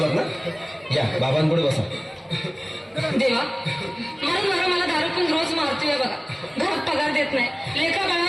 ना? या बाबांपुढे बसा. देवा, माझा नवरा मला दारू पण रोज मारतोय बघा. घरात पगार देत नाही, लेखा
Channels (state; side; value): identical; both; correlation 1.00